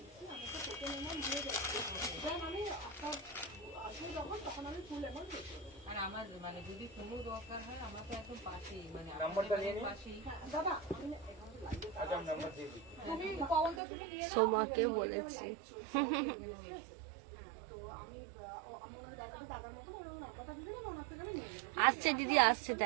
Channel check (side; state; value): left; drops out; at 13.8 s